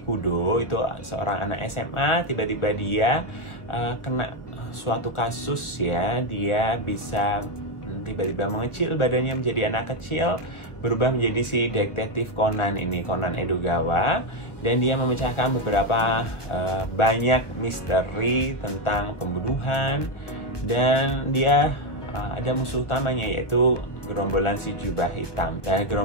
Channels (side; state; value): right; late; 1.4 ms